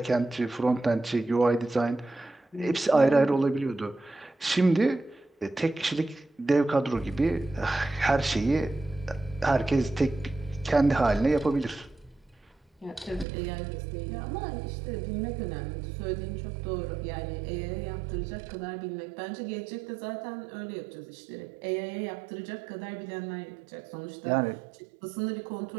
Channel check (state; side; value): drops out; left; at 13.2 s